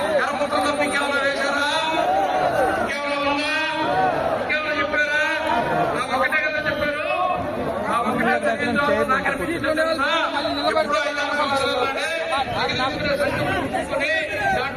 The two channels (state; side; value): identical; both; correlation 1.00